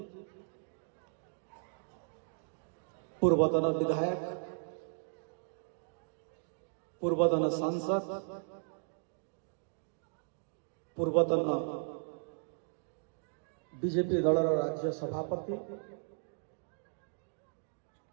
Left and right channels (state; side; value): silent; left; digital silence